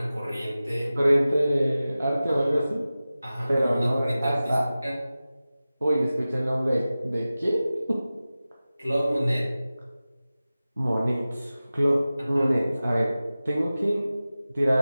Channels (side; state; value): both; inverted; correlation -0.96